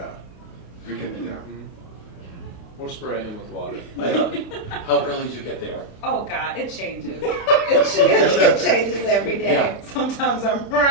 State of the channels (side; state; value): right; late; 28 ms